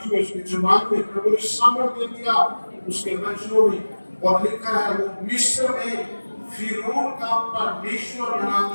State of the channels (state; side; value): inverted; both; correlation -1.00